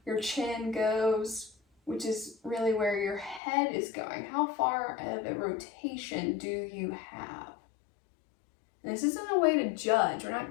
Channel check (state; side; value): drops out; right; at 3.4 s